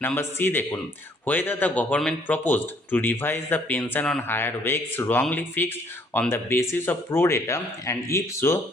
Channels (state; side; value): normal; both; correlation 0.63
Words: নাম্বার সি দেখুন, whether the government proposed to revise the pension on higher wakes wrongly fixed on the basis of pro rata and if so